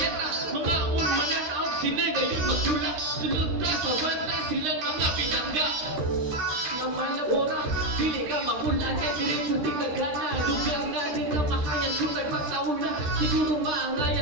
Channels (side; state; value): left; late; 13 ms